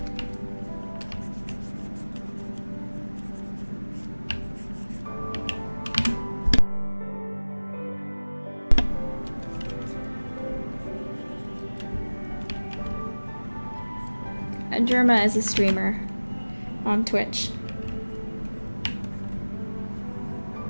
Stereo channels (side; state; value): both; inverted; correlation -1.00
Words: Germa is a streamer on Twitch.